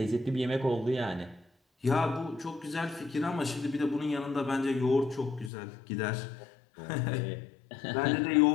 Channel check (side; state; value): right; drops out; at 5.5 s